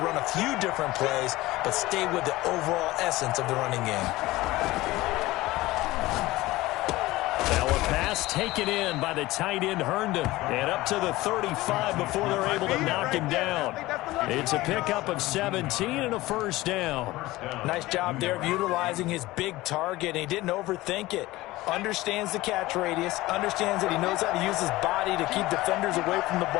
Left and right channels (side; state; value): right; quieter; 18.6 dB